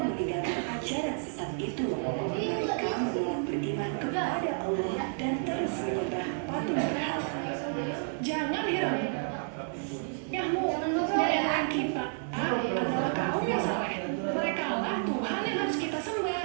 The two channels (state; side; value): silent; left; 57 dB below the other